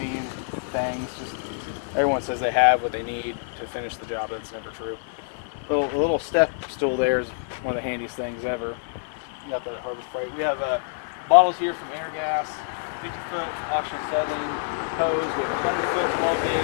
and things. Just everyone says they have what they need to finish the job. That's never true. A little step stool there is one of the handiest things ever. Got that at Harbor Freight. We have bottles here from Airgas, 50-foot optional settling hose. We have a 100-foot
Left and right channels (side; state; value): right; silent; digital silence